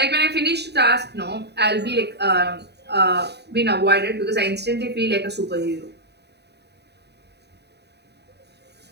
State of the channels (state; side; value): late; left; 0.49 ms